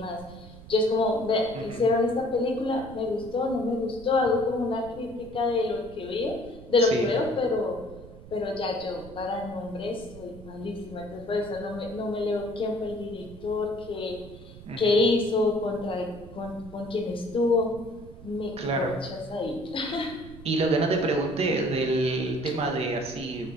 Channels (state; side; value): noise; right; rumble, 17 dB below the sound